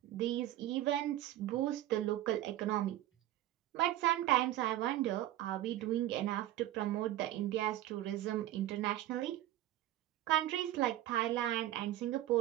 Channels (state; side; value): quieter; left; 14.0 dB